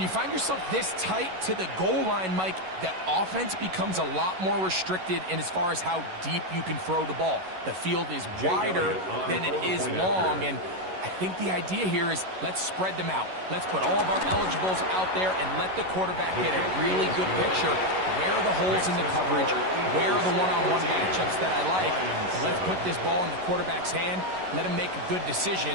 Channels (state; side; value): late; left; 11 ms